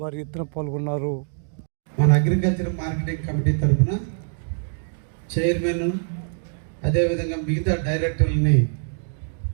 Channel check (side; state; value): left; silent; 63 dB below the other